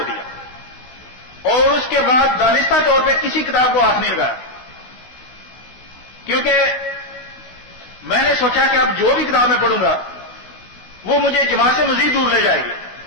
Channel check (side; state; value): right; late; 16 ms